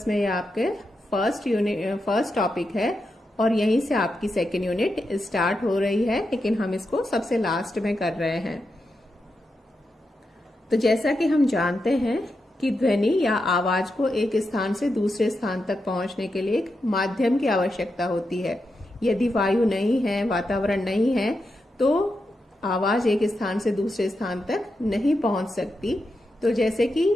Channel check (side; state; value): both; normal; correlation 0.87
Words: में ये आपके फर्स्ट टॉपिक है और यहीं से आपकी सेकेंड यूनिट स्टार्ट हो रही है, लेकिन हम इसको सबसे लास्ट में कर रहे हैं। तो जैसा कि हम जानते हैं कि ध्वनि या आवाज को एक स्थान से दूसरे स्थान तक पहुंचने के लिए एक माध्यम की आवश्यकता होती है। यदि वायु नहीं है, वातावरण नहीं है, तो आवाज एक स्थान से दूसरे स्थान तक नहीं पहुंच सकती। तो जैसे कि